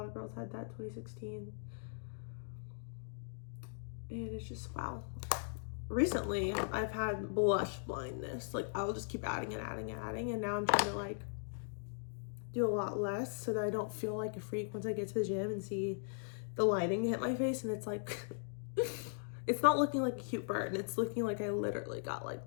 of girls had that 2016. And it's just, wow. Recently, I've had blush blindness. Like, I'll just keep adding and adding and adding. And now I'm trying to, like, do a lot less so that I don't feel like a freak once I get to the gym and see the lighting hit my face. And it's like, it's not looking like a cute burn. It's looking like I literally got,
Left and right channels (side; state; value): right; silent; digital silence